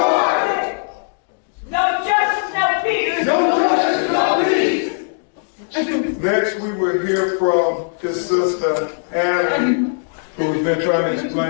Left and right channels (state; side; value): silent; right; digital silence